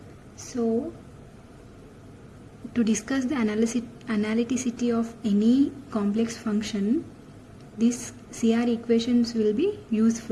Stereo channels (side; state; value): both; identical; correlation 1.00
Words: so to discuss the analyticity of any complex function, these CR equations will be